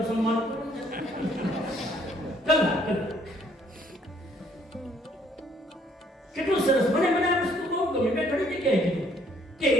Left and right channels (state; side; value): normal; both; correlation 0.64